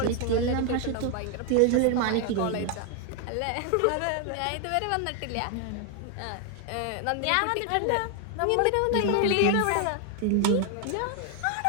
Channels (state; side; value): different; both; correlation 0.01